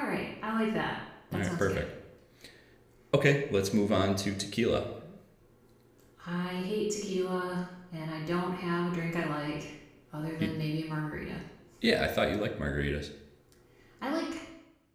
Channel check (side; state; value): both; identical; correlation 1.00